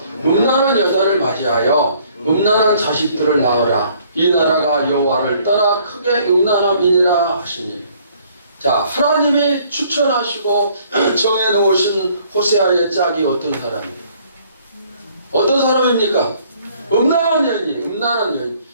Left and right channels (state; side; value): inverted; both; correlation -0.61